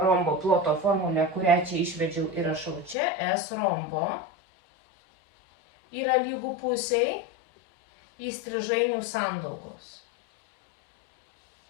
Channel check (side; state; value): right; drops out; at 3.0 s